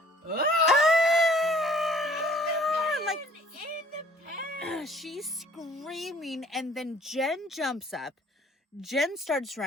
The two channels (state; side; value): normal; both; correlation 0.55